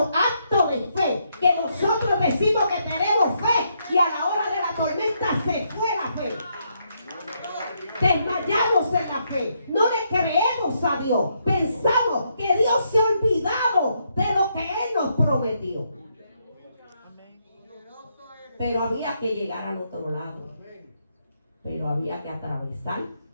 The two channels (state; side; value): inverted; both; correlation -0.76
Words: acto de fe. Que nosotros decimos que tenemos fe y a la hora de la tormenta se fue la fe. Desmayamos en la fe. No le creemos a Dios. Pensamos que Dios se ha olvidado de lo que Él nos prometió. Pero había que llegar al otro lado. Pero había que atravesar